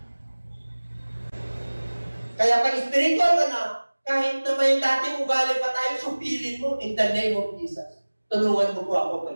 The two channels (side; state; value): both; inverted; correlation -1.00